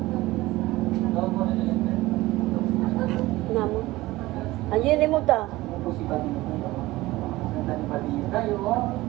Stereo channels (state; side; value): quieter; left; 18.5 dB